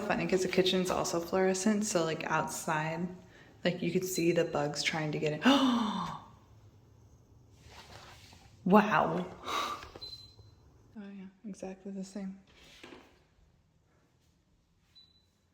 because the kitchen's also fluorescent, so like outside, like you could see the bugs trying to get in. Oh! Wow. Oh yeah, exactly the same.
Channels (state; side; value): identical; both; correlation 1.00